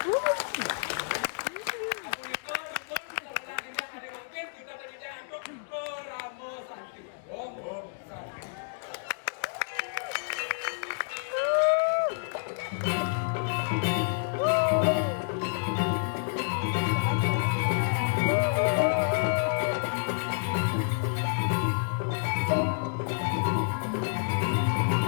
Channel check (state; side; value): silent; right; digital silence